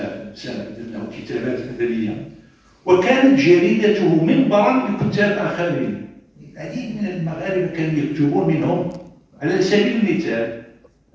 صبا له كتابات أدبية، وكانت جريدته منبرا لكتاب آخرين. العديد من المغاربة كانوا يكتبون، منهم على سبيل المثال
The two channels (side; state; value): both; identical; correlation 1.00